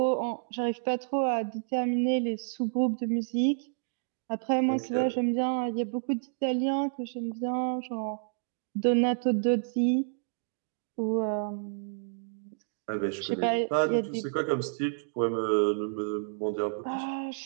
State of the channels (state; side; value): silent; left; digital silence